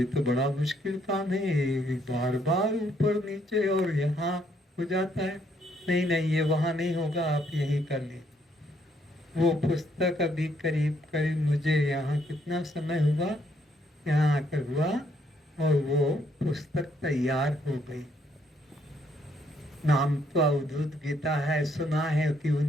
तो बड़ा मुश्किल काम है, बार बार ऊपर नीचे और यहाँ हो जाता है। नहीं ये वहाँ नहीं होगा, आप यही कर लीजिए। वो पुस्तक अभी करीब मुझे यहाँ कितना समय हुआ, यहाँ आकर हुआ और वो पुस्तक तैयार हो गई। नाम तो अवधूत गीता है, सुना है कि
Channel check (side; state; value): both; normal; correlation 0.71